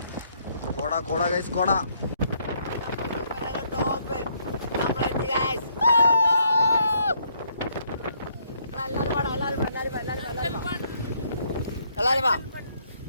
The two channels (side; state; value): both; inverted; correlation -0.70